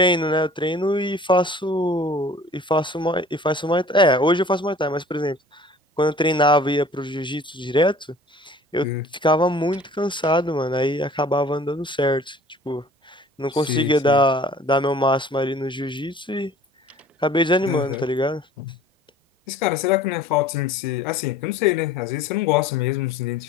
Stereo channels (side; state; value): both; normal; correlation 0.48